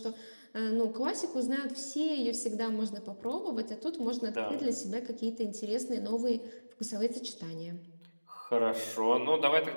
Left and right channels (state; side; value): inverted; both; correlation -1.00